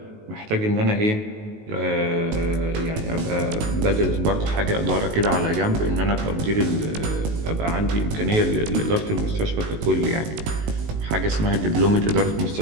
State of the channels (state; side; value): late; left; 19 ms